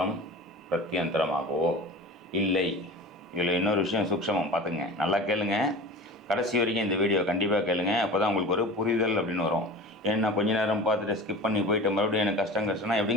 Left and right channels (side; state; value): both; normal; correlation 0.35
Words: பிரத்யந்தரமாகவோ இல்லை. இதில் இன்னொரு விஷயம் சூக்ஷமம் பார்த்துங்க, நல்லா கேளுங்க, கடைசி வரைக்கும் இந்த வீடியோ கண்டிப்பாக கேளுங்க. அப்போ தான் உங்களுக்கு ஒரு புரிதல் அப்படின்னு வரும். ஏன்னா கொஞ்ச நேரம் பார்த்துட்டு ஸ்கிப் பண்ணி போயிட்டு மறுபடியும் எனக்கு கஷ்டம்னா